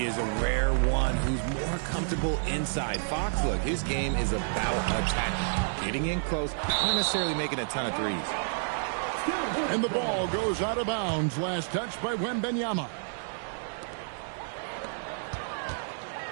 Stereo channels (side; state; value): left; silent; digital silence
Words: is a rare one who's more comfortable inside. Fox, look, his game is about attack. Getting in close, not necessarily making a ton of threes. And the ball goes out of bounds. Last touch by Wembanyama.